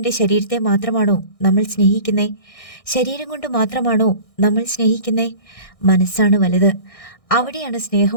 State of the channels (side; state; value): right; late; 1.6 ms